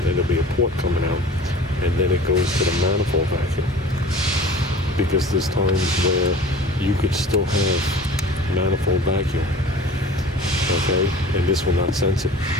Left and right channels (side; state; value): both; normal; correlation 0.42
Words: there'll be a port coming out, and then it goes to the manifold vacuum. Because there's times where you could still have manifold vacuum, okay, and this will not sense it.